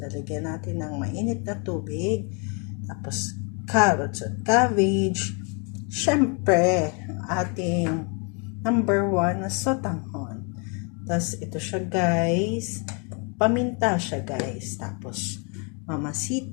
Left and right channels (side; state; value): right; quieter; 35.0 dB